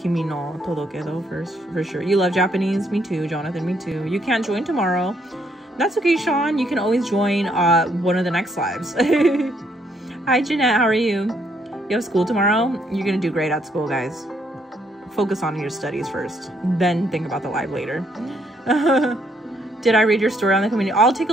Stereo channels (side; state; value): both; normal; correlation 0.71